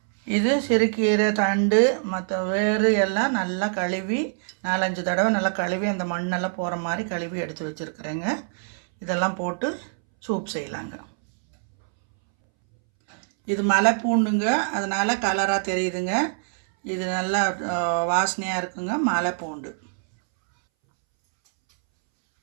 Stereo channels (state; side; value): silent; left; 62 dB below the other